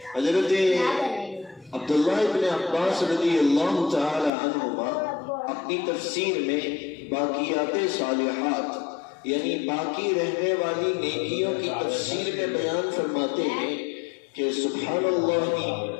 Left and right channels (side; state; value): right; drops out; at 4.3 s